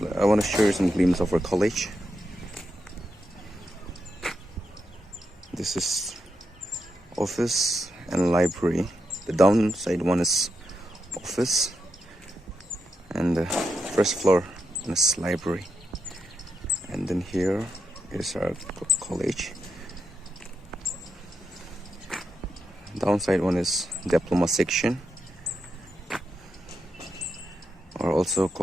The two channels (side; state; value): both; normal; correlation 0.84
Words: want to share some glimpse of our college. This is office and library. The downside one is office, and the first floor is library. And then here is our college. Downside one is diploma section, or also